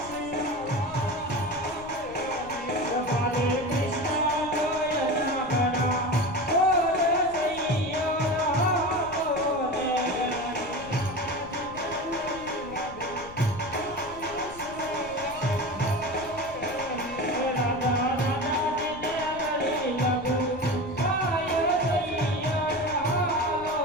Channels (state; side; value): noise; left; rumble, 18 dB below the sound